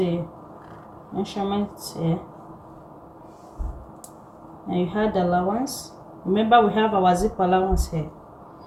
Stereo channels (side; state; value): both; identical; correlation 1.00